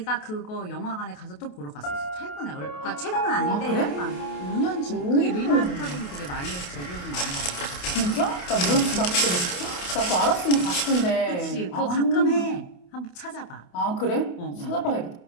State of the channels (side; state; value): right; late; 28 ms